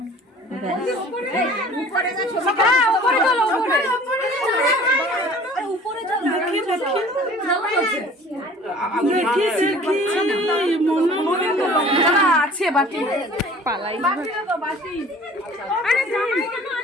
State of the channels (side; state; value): both; normal; correlation 0.48